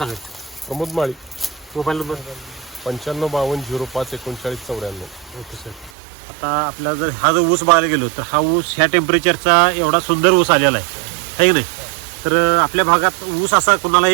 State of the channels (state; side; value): drops out; left; at 5.9 s